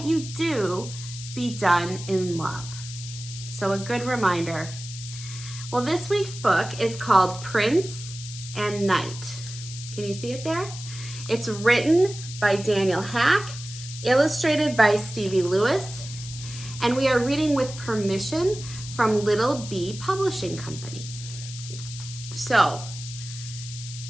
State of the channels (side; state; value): left; noise; hiss, 12 dB below the sound